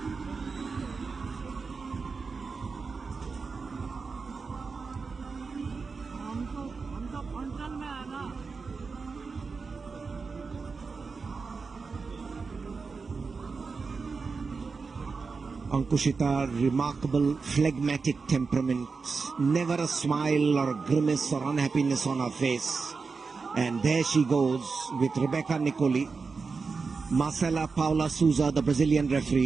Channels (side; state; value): left; quieter; 4.7 dB